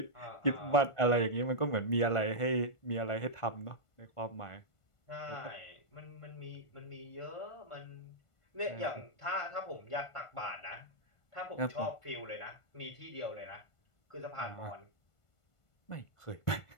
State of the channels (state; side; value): late; right; 1.5 ms